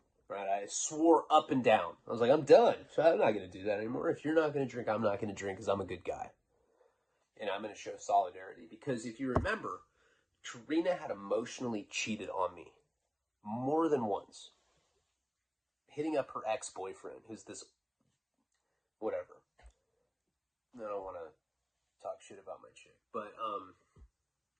Right? I swore up and down. I was like, I'm done. So I'm not going to do that anymore. If you're not going to drink, I'm not going to drink because I'm a good guy. And I'm going to show solidarity. Because if you remember, Karina had emotionally cheated on me more than once. Hitting up her ex-boyfriend, who's this, whatever. I don't want to talk shit about my chick. But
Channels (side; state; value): both; identical; correlation 1.00